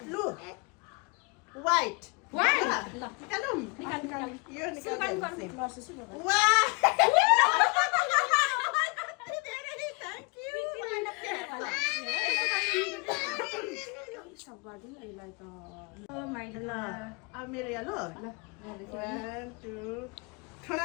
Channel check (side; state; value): right; quieter; 31.4 dB